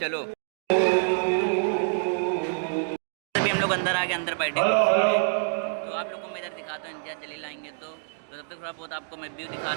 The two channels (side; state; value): left; silent; digital silence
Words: चलो अभी हम लोग अंदर आके अंदर बैठे कुर्सी पे। तो आप लोग को मैं इधर दिखाता हूँ, इम्तियाज जलील आएंगे तो तब तक थोड़ा बहुत आपको मैं व्यू